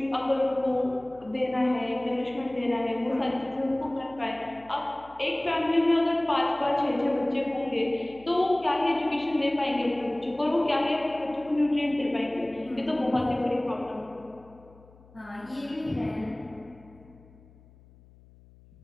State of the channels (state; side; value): noise; left; hum, 25 dB below the sound